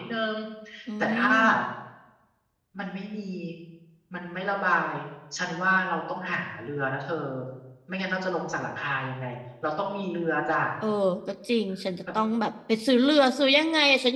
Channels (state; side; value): identical; both; correlation 1.00